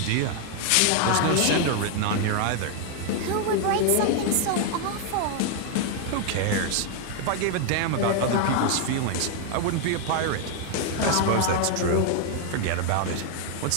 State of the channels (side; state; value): both; different; correlation 0.00